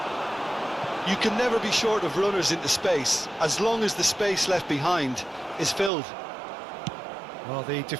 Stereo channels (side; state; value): left; drops out; at 5.9 s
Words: You can never be short of runners into space, as long as the space left behind is filled. Well, the